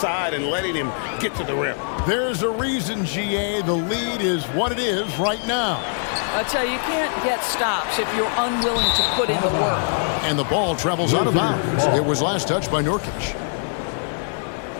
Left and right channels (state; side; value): silent; right; 63 dB below the other